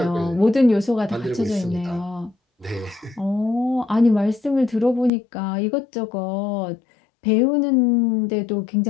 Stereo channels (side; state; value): right; drops out; at 5.1 s